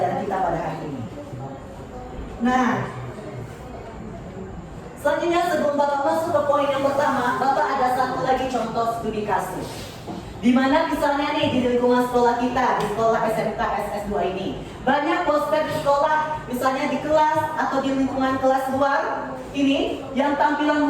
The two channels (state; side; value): identical; both; correlation 1.00